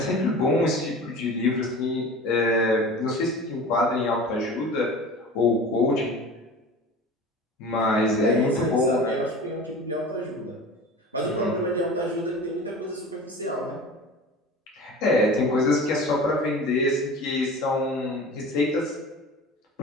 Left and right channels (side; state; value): both; normal; correlation 0.37